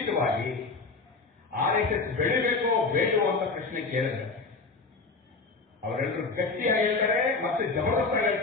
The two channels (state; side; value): quieter; right; 4.0 dB